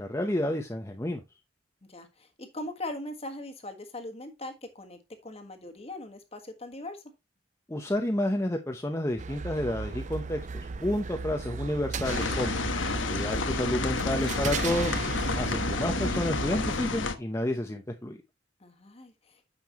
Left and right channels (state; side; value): normal; both; correlation 0.63